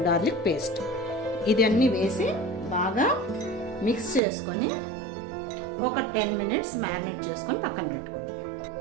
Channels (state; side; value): drops out; left; at 4.2 s